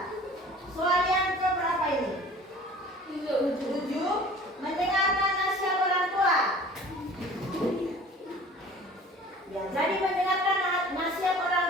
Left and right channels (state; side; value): normal; both; correlation 0.45